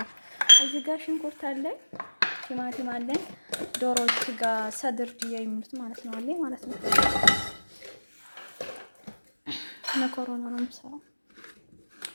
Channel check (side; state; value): both; inverted; correlation -1.00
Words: እዚህ ጋር ሽንኩርት አለኝ፣ ቲማቲም አለኝ፣ ዶሮ ስጋ ሰድር ድያ የሚሉት ማለት ነው አለኝ ማለት ነው። መኮረኒ ነው የምሰራው።